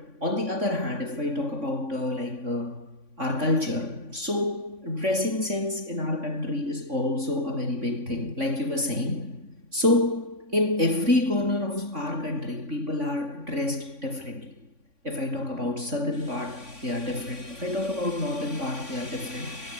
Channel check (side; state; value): left; late; 3.5 ms